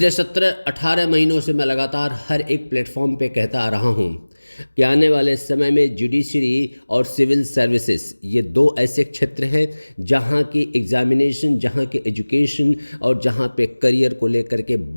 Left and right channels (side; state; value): both; inverted; correlation -1.00